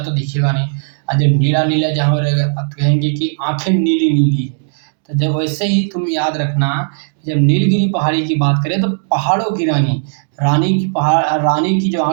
दिखेगा नहीं। और जब नीला नीला जहाँ रहेगा अब कहेंगे कि आंखें नीली नीली है। तो जब वैसे ही तुम याद रखना, जब नीलगिरी पहाड़ी की बात करें तो पहाड़ों की रानी, रानी की जो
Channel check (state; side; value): silent; left; digital silence